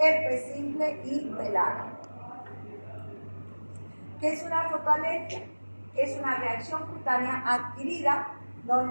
simple y pelaga. ¿Qué es una fotoalergia? Es una reacción cutánea adquirida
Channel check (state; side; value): inverted; both; correlation -1.00